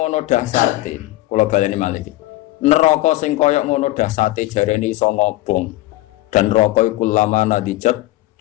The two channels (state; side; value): quieter; right; 17.5 dB